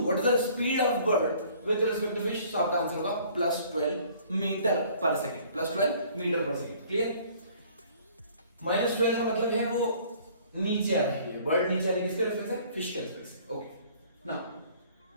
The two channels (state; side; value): inverted; both; correlation -0.55